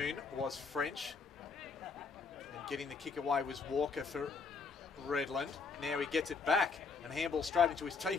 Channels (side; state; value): right; quieter; 4.8 dB